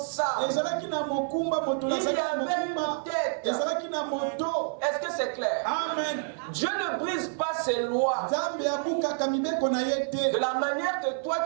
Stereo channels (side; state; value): left; silent; 59 dB below the other